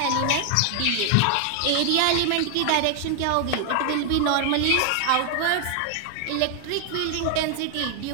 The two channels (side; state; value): both; different; correlation 0.00